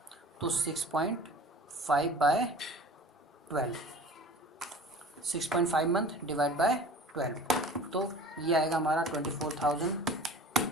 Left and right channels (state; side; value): normal; both; correlation 0.42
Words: तो 6.5/12, 6.5 मंथ डिवाइड बाय 12, तो ये आएगा हमारा 24,000।